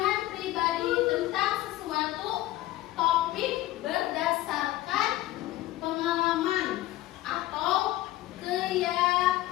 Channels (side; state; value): right; quieter; 16.1 dB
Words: pribadi tentang sesuatu topik berdasarkan pengalaman atau